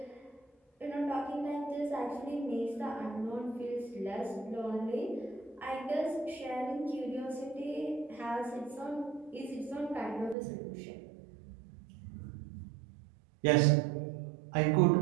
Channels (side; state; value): left; drops out; at 10.4 s